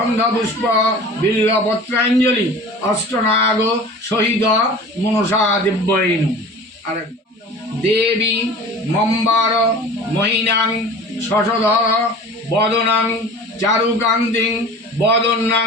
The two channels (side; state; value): both; normal; correlation 0.40